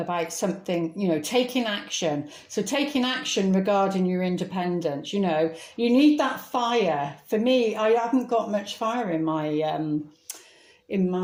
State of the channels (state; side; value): identical; both; correlation 1.00